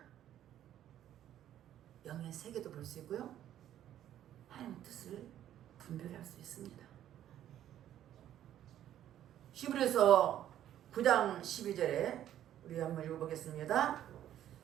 영의 세계도 볼 수 있고요. 하나님의 뜻을 분별할 수 있습니다. 히브리서 9장 12절에 우리 한번 읽어보겠습니다.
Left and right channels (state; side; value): quieter; left; 11.5 dB